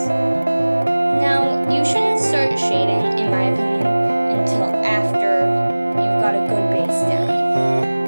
Shading, in my opinion, until after you've got a good base down.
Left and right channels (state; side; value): inverted; both; correlation -1.00